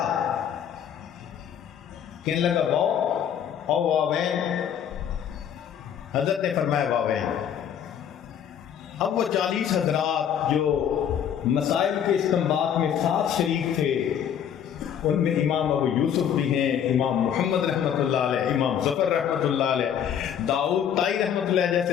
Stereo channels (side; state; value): right; quieter; 9.0 dB